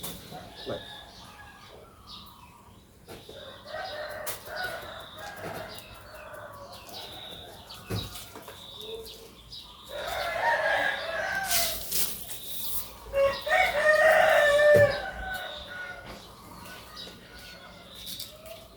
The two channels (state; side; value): identical; both; correlation 1.00